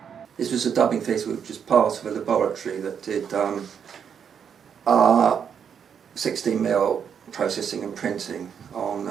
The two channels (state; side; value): quieter; left; 7.6 dB